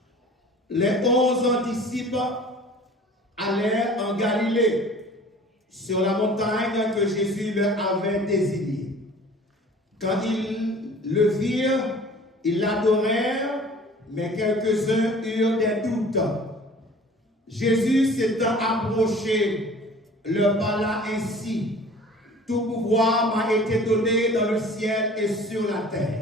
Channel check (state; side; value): normal; both; correlation 0.46